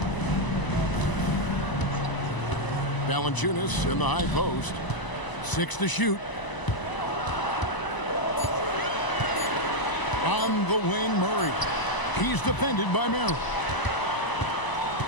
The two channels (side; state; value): right; late; 1.0 ms